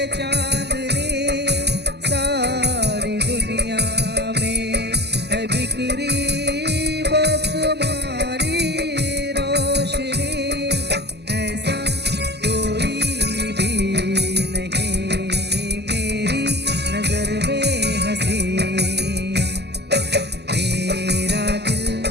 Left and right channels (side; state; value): left; late; 0.49 ms